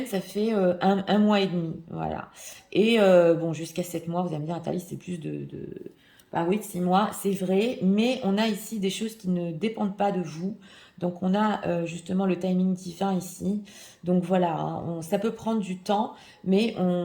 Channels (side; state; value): both; identical; correlation 1.00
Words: ça fait un mois et demi. Voilà. Et bon, jusqu'à 7 mois, vous allez me dire, Nathalie, c'est plus bah oui, de 6 mois, c'est vrai. Mais on a ici des choses qui ne dépendent pas de vous. Donc, on a justement le timing divin ici. Donc, voilà, hein, ça peut prendre du temps, mais